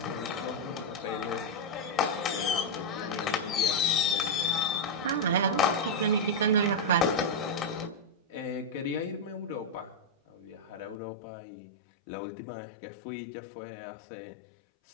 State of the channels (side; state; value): right; drops out; at 11.0 s